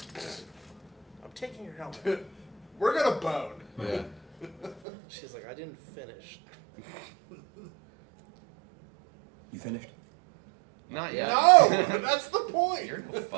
I'm taking your helmet. we're gonna bone. Yeah. She's like, I didn't finish. You finished? Not yet. No, that's the point. You're no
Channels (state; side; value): drops out; left; at 4.8 s